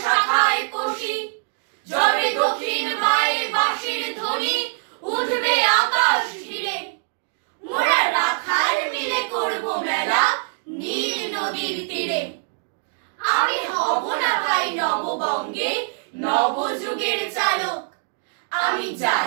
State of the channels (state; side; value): silent; left; digital silence